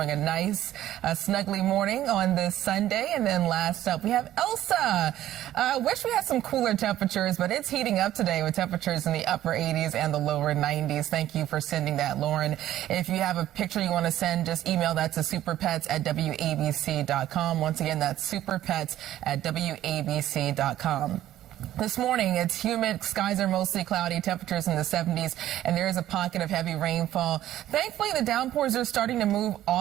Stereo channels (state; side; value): quieter; left; 13.1 dB